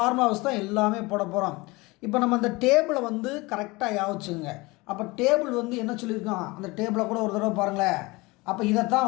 தான் எல்லாமே போட போகிறோம். இப்போ நம்ம அந்த டேபிளை வந்து கரெக்டாக யாவச்சுங்க. அப்போ டேபிள் வந்து என்ன சொல்லியிருக்கோம்? அந்த டேபிளை கூட ஒரு தடவை பாருங்களேன். அப்போ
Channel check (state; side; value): quieter; right; 23.3 dB